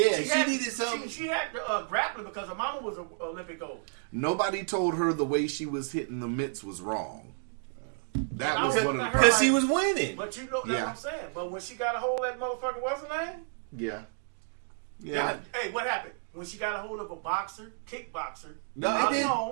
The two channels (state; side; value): silent; left; digital silence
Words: she had- needed something. She had grappling because her mama was an Olympic gold. Nobody told her the way she was hitting the mitts was wrong. That was one of the Because she was winning. But you know that's Yeah. what I'm saying. But when she got a hold of that motherfucker, what's her name? yeah. Hey, what happened? When she got a hold of a boxer, kickboxer, No, Holly it